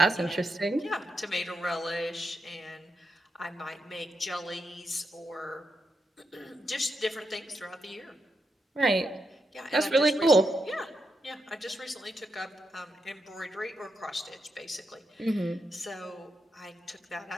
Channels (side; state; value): both; normal; correlation 0.84